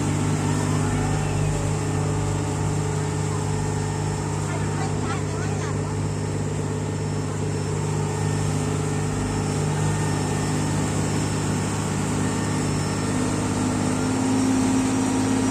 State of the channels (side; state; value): both; identical; correlation 1.00